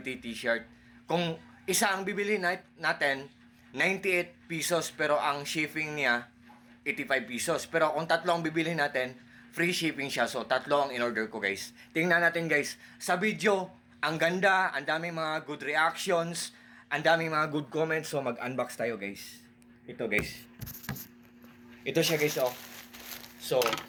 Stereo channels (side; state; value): both; identical; correlation 1.00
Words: t-shirt. Kung isa ang bibili natin, 98 pesos pero ang shipping niya 85 pesos. Pero kung tatlo ang bibili natin, free shipping siya. So tatlo ang in-order ko guys. Tingnan natin guys. Sa video, ang ganda, ang daming mga good reactions, ang daming mga good comments. So mag-unbox tayo guys. Ito guys. Ito siya guys oh. So,